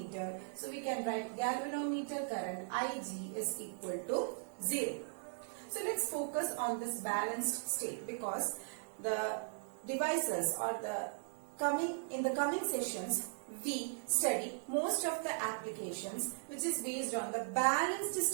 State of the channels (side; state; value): left; silent; digital silence